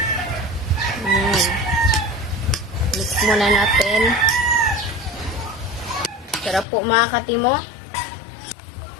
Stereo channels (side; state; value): right; drops out; at 6.7 s